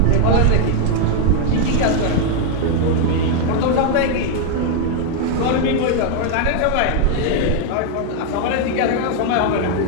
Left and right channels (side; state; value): both; different; correlation 0.00